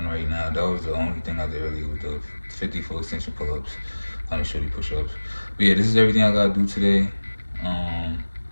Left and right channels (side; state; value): both; inverted; correlation -1.00